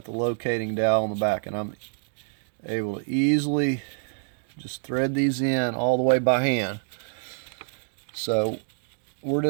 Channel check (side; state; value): left; silent; 60 dB below the other